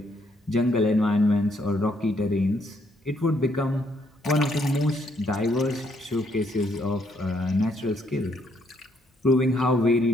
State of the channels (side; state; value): both; normal; correlation 0.71